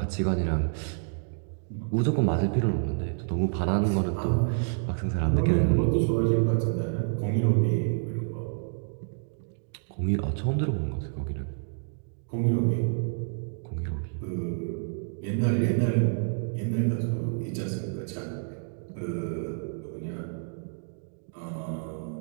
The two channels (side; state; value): left; silent; digital silence